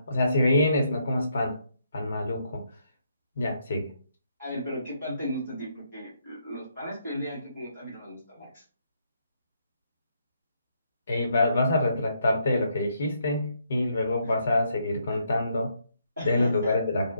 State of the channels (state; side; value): inverted; both; correlation -0.75